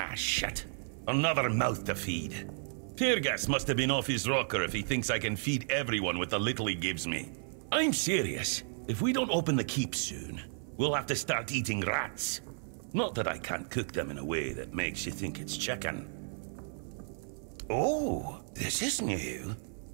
shit. Another mouth to feed. Teargas must have been off his rocker if he thinks I can feed everyone with the little he gives me. I'm serious. If we don't open the keep soon, we'll have to start eating rats. Not that I can't cook them in a way that makes you think it's chicken. Oh, this is new.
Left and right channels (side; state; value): left; silent; 56 dB below the other